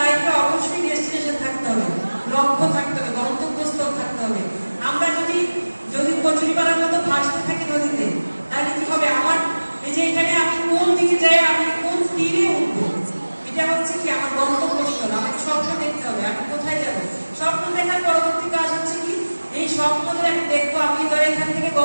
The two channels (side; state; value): both; inverted; correlation -1.00